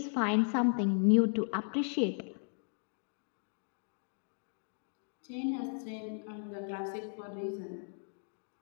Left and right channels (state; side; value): silent; right; digital silence